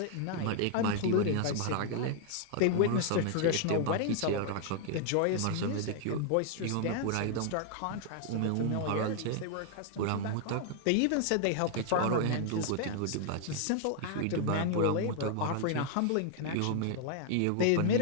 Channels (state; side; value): different; both; correlation 0.00